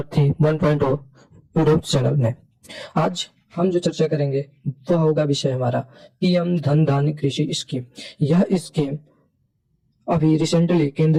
1.0 यूट्यूब चैनल में। आज हम जो चर्चा करेंगे वह होगा विषय हमारा पीएम धन धान्य कृषि स्कीम। यह स्कीम अभी रिसेंटली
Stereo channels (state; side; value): identical; both; correlation 1.00